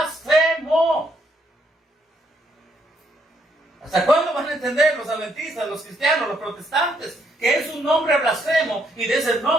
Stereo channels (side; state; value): both; normal; correlation 0.73